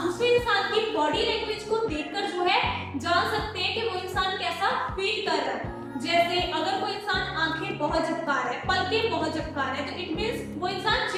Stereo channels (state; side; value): identical; both; correlation 1.00